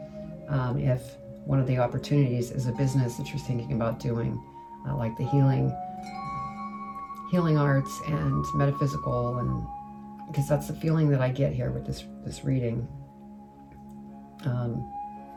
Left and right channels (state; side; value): identical; both; correlation 1.00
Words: if one of the opportunities is a business that you're thinking about doing, like the healing arts and metaphysical, and because that's the feeling that I get here with this reading.